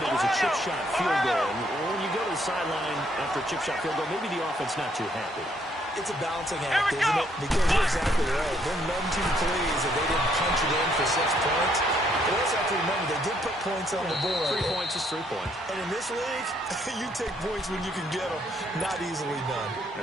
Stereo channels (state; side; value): normal; both; correlation 0.69